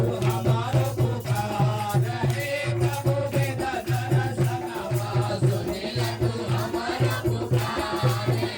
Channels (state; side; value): identical; both; correlation 1.00